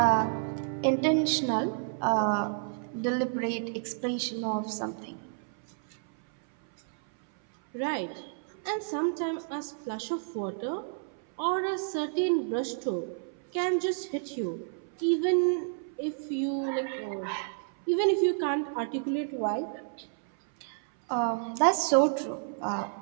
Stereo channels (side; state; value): left; silent; 58 dB below the other